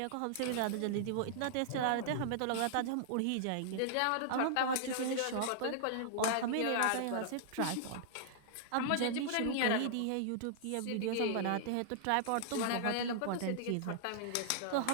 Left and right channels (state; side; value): different; both; correlation -0.01